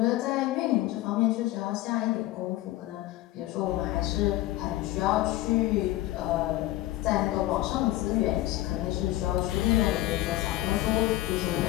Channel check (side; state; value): right; quieter; 16.1 dB